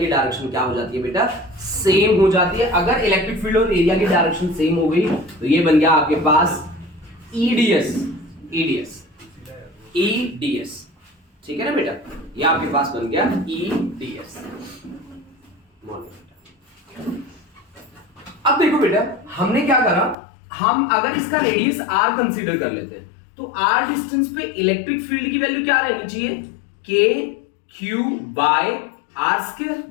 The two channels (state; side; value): drops out; right; at 20.2 s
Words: डायरेक्शन क्या हो जाती है बेटा, सेम हो जाती है। अगर इलेक्ट्रिक फील्ड और एरिया की डायरेक्शन सेम हो गई तो ये बन गया आपके पास ईडीएस, ईडीएस। ठीक है ना बेटा, ये आपके पास बन गया ईडीएस। अब देखो बेटा, हमने क्या करा, हम अगर इसका रेडियस r कंसीडर कर लेते हैं तो r डिस्टेंस पे इलेक्ट्रिक फील्ड की वैल्यू क्या रहनी चाहिए, k q by R square,